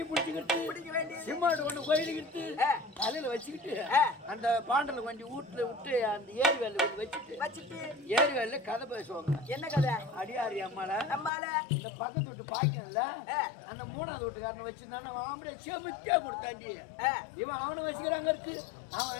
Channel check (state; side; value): drops out; right; at 11.3 s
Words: பிடிச்சிக்கிட்டு, பிடிக்க வேண்டியது. சிம்மாடு ஒண்ணு கோயிலுக்கிட்டு, ஆ. தலையில வச்சுக்கிட்டு, ஆ. அந்த பாண்டல கொஞ்சம் வீட்டுல விட்டு அந்த ஏரி வேலை கொஞ்சம் வச்சுட்டு வச்சுட்டு ஏரி வேலையில கதை பேசுவாங்க. என்ன கதை? அடியாரி அம்மால நம்மால இந்த பக்கத்து வீட்டு பாய்க்கன்ல ஆ. அந்த 3வது வீட்டுக்காரனை வச்சிருந்தானே அவன் ஆம்பளை செமிச்சா கொடுத்தாண்டி. ஆ. இவன் அவனை வச்சுக்கிறாங்க இருக்கு, அவன்